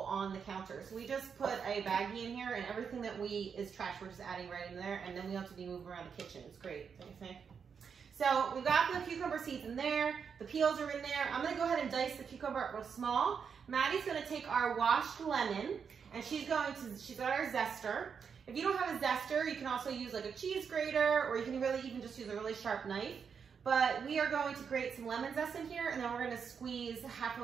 on the counter. So we just put a baggie in here, and everything that is trash, we're just adding right in there, and then we don't have to be moving around the kitchen. It's great, don't you think? So we've got the cucumber seeds in there, the peels are in there. I'm gonna go ahead and dice the cucumber up real small. Maddie's gonna take our washed lemon, and she's got our zester. If you don't have a zester, you can also use like a cheese grater, or you can really even just use a really sharp knife. But we are going to grate some lemon zest in here, and then we're gonna squeeze half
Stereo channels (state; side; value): quieter; left; 6.5 dB